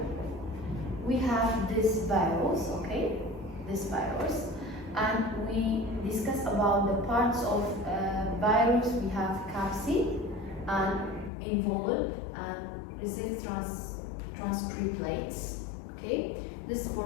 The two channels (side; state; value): right; drops out; at 11.3 s